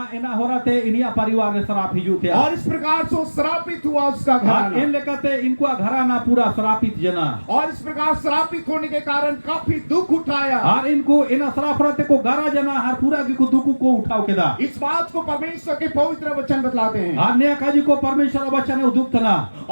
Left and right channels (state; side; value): inverted; both; correlation -1.00